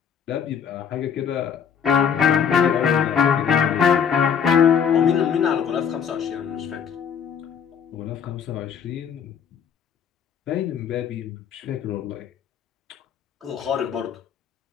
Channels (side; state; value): right; quieter; 7.6 dB